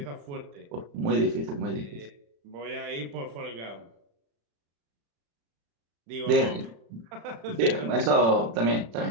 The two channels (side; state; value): left; late; 35 ms